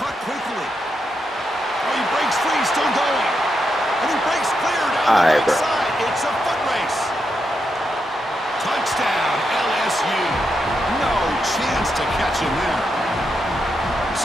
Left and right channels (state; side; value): normal; both; correlation 0.84